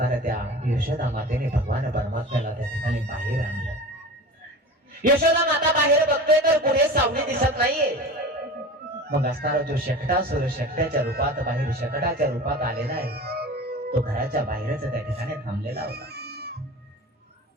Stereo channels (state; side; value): normal; both; correlation 0.34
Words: त्या यशोदा मातेने भगवान परमात्म्याला त्या ठिकाणी बाहेर आणलं. यशोदा माता बाहेर बघतोय तर पुढे सावली दिसत नाहीये. मग असणारा जो शकटासुर शकट्याच्या रूपात बाहेर शकटाच्या रूपात आलेला आहे तो घराच्या बाहेरच त्या ठिकाणी थांबलेला होता.